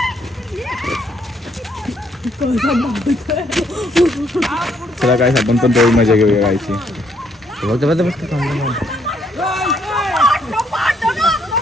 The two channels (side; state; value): both; normal; correlation 0.70